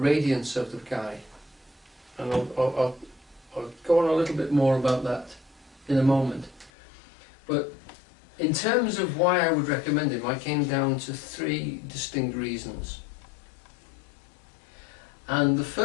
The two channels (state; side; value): drops out; right; at 6.7 s